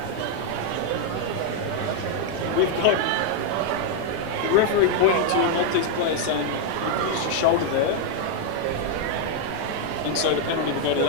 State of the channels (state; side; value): different; both; correlation 0.00